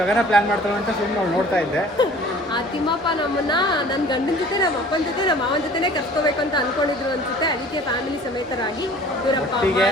ಪ್ಲಾನ್ ಮಾಡ್ತಾಳೆ ಅಂತ ಸುಮ್ಮನೆ ಅವ್ಳು ನೋಡ್ತಾ ಇದ್ದೆ. ಆ ತಿಮ್ಮಪ್ಪ ನಮ್ಮನ್ನ ನನ್ನ ಗಂಡನ ಜೊತೆ, ನಮ್ಮ ಅಪ್ಪನ ಜೊತೆ, ನಮ್ಮ ಮಾವನ ಜೊತೆನೇ ಕರ್ಕೋಬೇಕು ಅಂತ ಅನ್ಕೊಂಡಿದ್ರು ಅನ್ಸುತ್ತೆ. ಅದಕ್ಕೆ ಫ್ಯಾಮಿಲಿ ಸಮೇತರಾಗಿ ಇವರಪ್ಪ ಅಮ್ಮ,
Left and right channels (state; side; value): normal; both; correlation 0.49